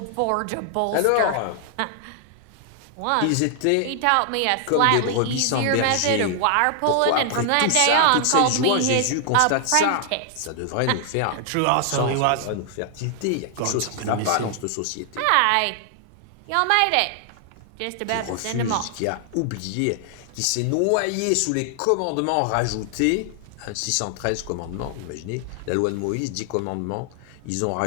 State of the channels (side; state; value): both; different; correlation 0.00